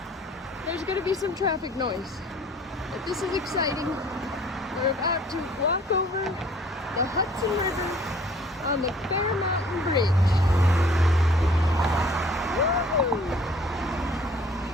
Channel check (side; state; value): both; normal; correlation 0.54